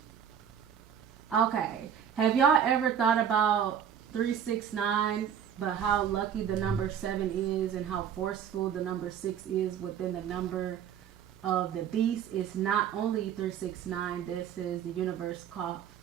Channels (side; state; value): left; quieter; 8.6 dB